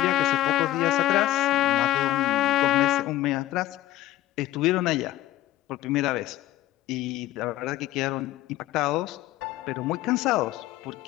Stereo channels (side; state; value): right; quieter; 15.5 dB